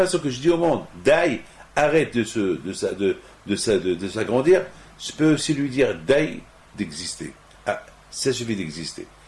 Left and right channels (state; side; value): identical; both; correlation 1.00